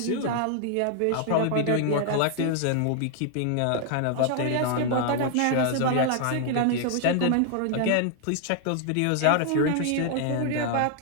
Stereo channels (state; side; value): different; both; correlation 0.00